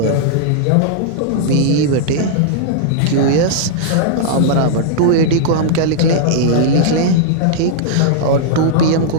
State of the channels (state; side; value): different; both; correlation -0.02